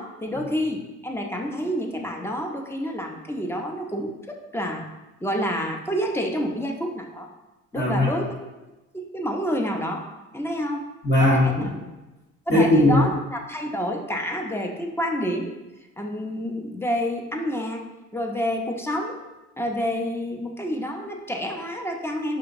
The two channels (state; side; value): normal; both; correlation 0.59